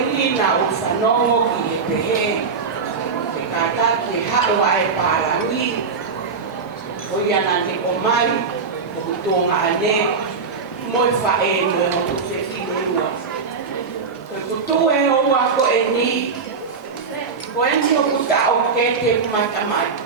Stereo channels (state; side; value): quieter; left; 5.1 dB